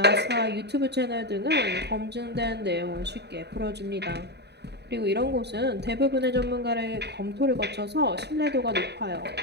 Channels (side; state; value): left; late; 0.49 ms